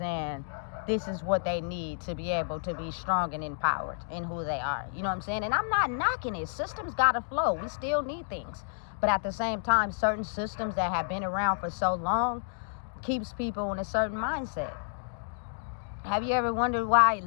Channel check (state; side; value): silent; right; digital silence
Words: this is what they need to be able to be strong and empowered in who they are. You know what I'm saying? And I'm not knocking it. Systems got to flow. We still need things. But at the same time, certain systems that have been around for so long keeps people in a certain mindset. Have you ever wondered why